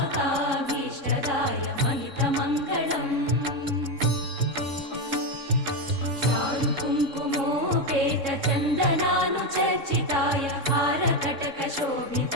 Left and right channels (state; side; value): late; left; 3.6 ms